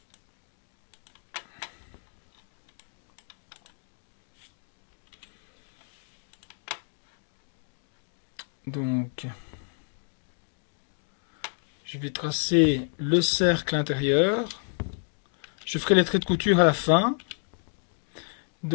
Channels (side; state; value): right; silent; 58 dB below the other